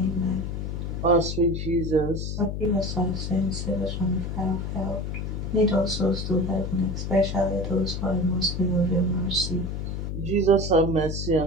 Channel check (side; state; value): left; noise; hum, 4 dB below the sound